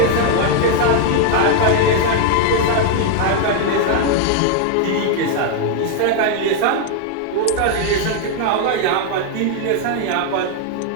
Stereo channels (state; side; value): different; both; correlation 0.00